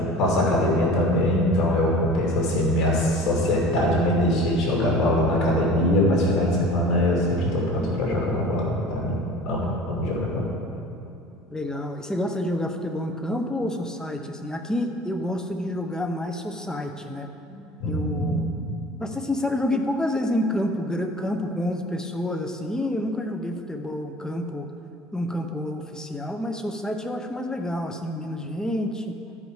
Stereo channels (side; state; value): both; normal; correlation 0.43